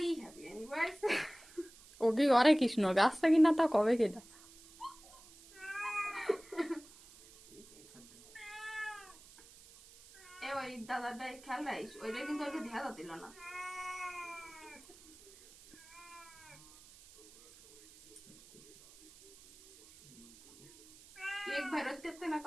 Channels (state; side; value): noise; right; hiss, 22 dB below the sound